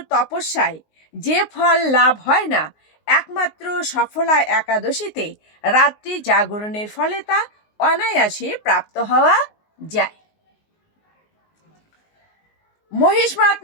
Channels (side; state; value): right; late; 19 ms